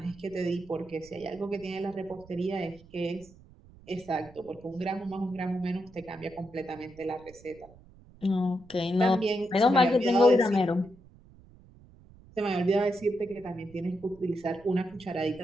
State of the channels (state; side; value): noise; right; rumble, 23 dB below the sound